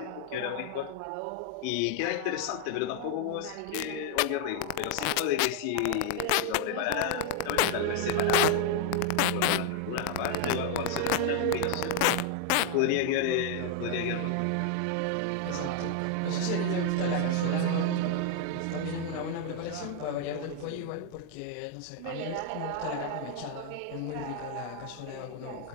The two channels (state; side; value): different; both; correlation 0.01